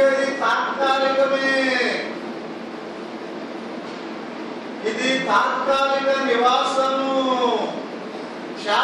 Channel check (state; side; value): identical; both; correlation 1.00